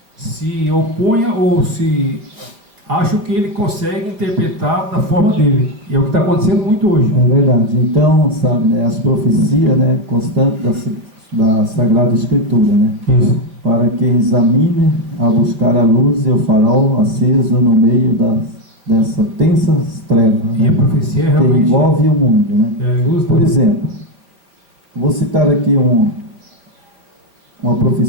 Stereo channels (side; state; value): left; late; 4.7 ms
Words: se oponha ou se acha que ele consegue interpretar da forma dele. E é o que está acontecendo muito hoje. É verdade. Então, sabe, né, as profecias, né, constantes da Sagrada Escritura, né? Isso. Para que examine a buscar a luz e o farol aceso no meio dessa tensas trevas, e né, a profecia é realmente que envolve o mundo, né? Luz, por exemplo, vou citar aqui uma